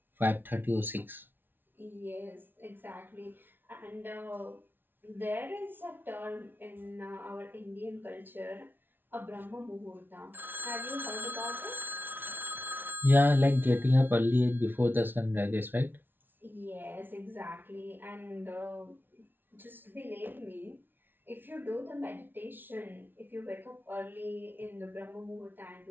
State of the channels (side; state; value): left; late; 0.097 ms